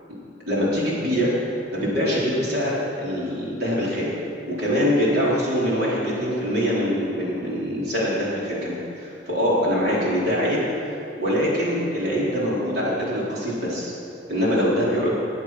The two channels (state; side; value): normal; both; correlation 0.36